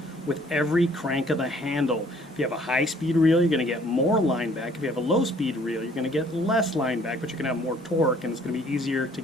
with every crank of the handle. If you have a high-speed reel, you're going to get more line back. If you have a low-speed reel, you're going to get less line back, but you're going to have more torque, and it's going to be easier to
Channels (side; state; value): both; normal; correlation 0.59